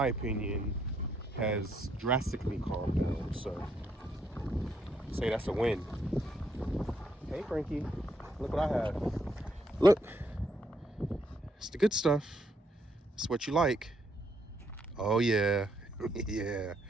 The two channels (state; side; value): normal; both; correlation 0.74